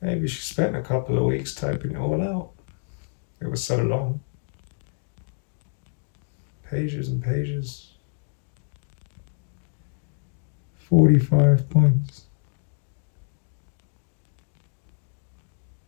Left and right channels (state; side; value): silent; right; digital silence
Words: she spent a couple of weeks typing it all out. It was so long. Pages and pages. 45 points.